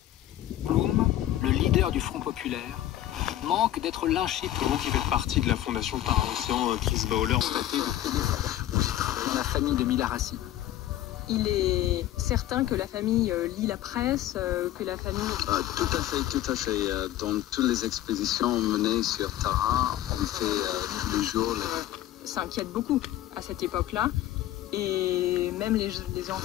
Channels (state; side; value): quieter; right; 13.5 dB